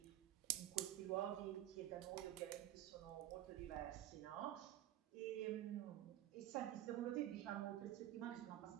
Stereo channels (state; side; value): quieter; left; 13.3 dB